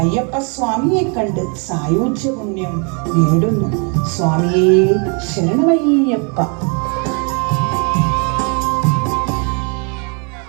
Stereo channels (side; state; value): left; quieter; 36.2 dB